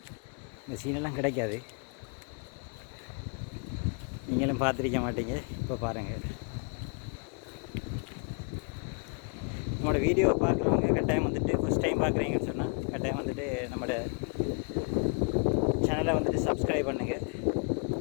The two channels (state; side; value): quieter; right; 38.2 dB